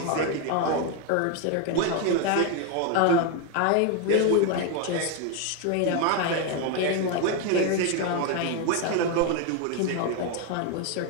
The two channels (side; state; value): both; different; correlation 0.02